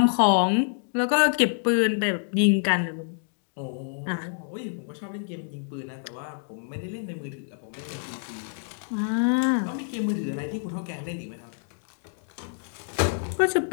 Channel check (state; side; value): silent; right; digital silence